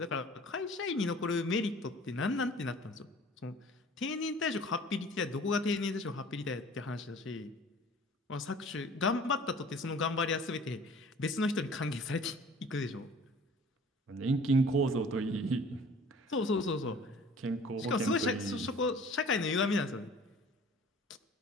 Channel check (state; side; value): normal; both; correlation 0.48